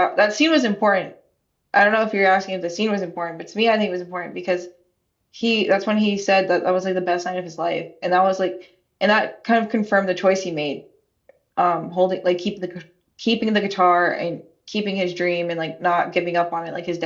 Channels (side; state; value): both; identical; correlation 1.00